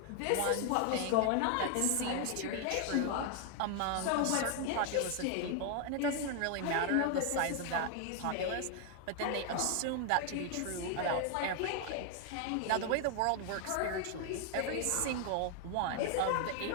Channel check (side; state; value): both; different; correlation 0.00